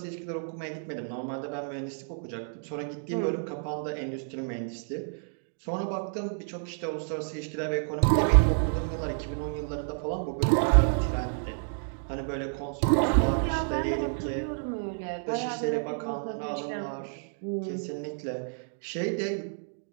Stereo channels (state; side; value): silent; left; digital silence